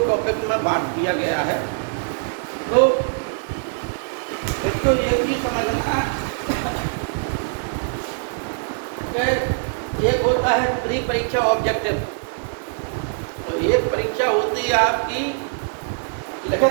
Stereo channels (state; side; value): silent; left; digital silence